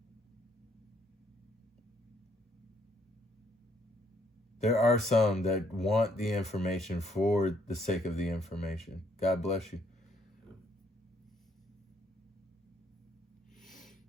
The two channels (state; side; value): normal; both; correlation 0.69